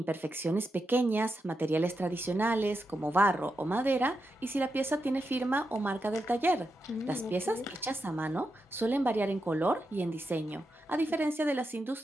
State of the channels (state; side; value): normal; both; correlation 0.86